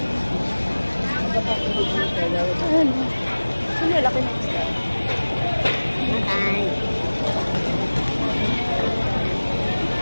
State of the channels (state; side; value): inverted; both; correlation -1.00